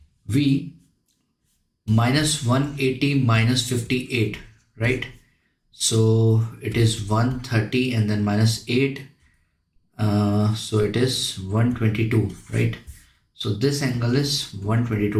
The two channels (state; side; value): identical; both; correlation 1.00